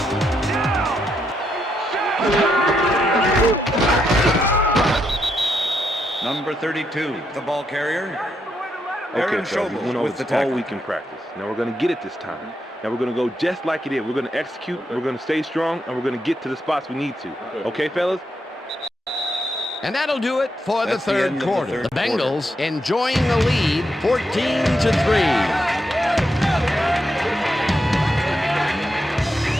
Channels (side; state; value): both; normal; correlation 0.80